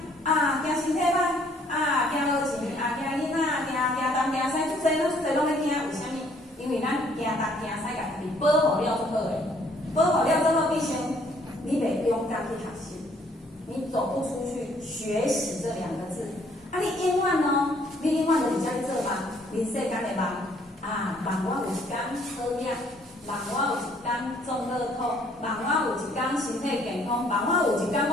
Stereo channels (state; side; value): normal; both; correlation 0.63